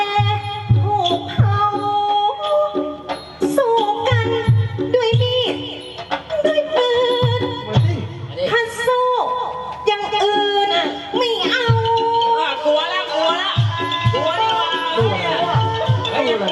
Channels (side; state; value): both; identical; correlation 1.00